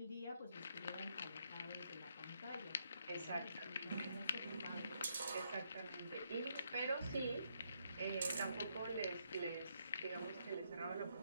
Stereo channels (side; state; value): both; inverted; correlation -0.75